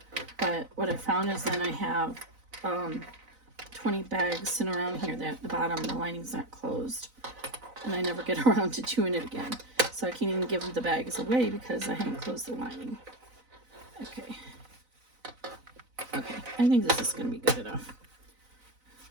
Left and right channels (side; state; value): left; late; 4.0 ms